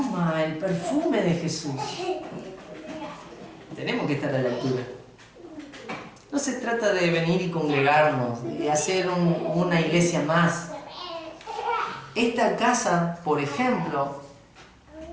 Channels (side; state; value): both; identical; correlation 1.00